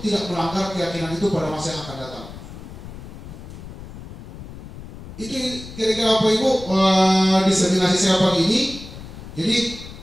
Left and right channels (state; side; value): noise; left; rumble, 13 dB below the sound